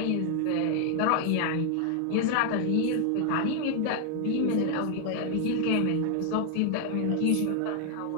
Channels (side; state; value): both; different; correlation 0.00